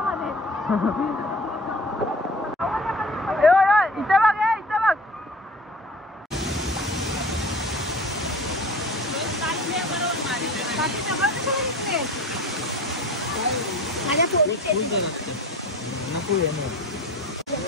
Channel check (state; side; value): normal; both; correlation 0.40